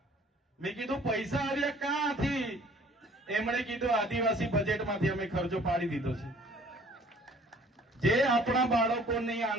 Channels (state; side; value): normal; both; correlation 0.54